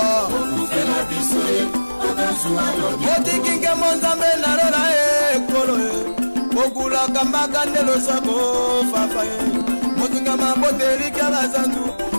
Moti kinke monzambe na lola kolo Okula kambaka ndelo sako fafaye Motunga mabote lika batandu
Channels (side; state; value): both; inverted; correlation -1.00